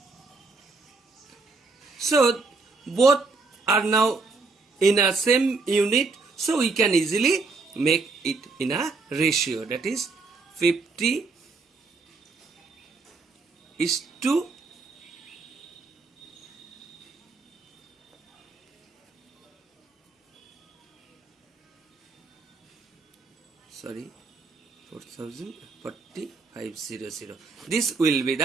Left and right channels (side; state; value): left; quieter; 4.1 dB